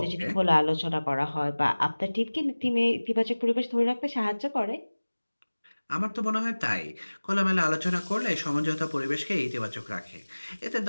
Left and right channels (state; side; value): inverted; both; correlation -1.00